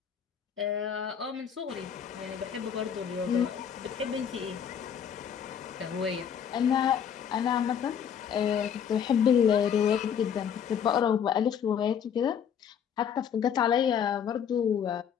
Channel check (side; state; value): right; quieter; 8.1 dB